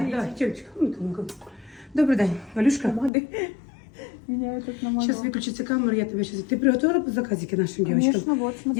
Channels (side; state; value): right; drops out; at 3.1 s